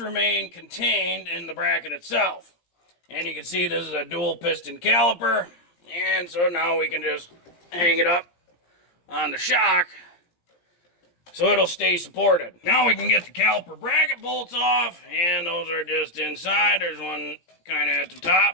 contained in the bracket itself. And you can see this is a dual piston caliper. And so now we can just hang it up on the shock so it'll stay supported. Now we can get the caliper bracket bolts off, and those are just inside. There's one kind of at the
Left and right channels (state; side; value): late; right; 17 ms